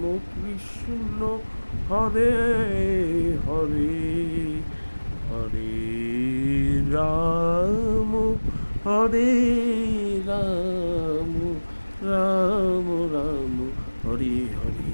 কৃষ্ণ হরে হরে হরে রাম হরে রাম রাম রাম হরে হরে।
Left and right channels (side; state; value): both; inverted; correlation -1.00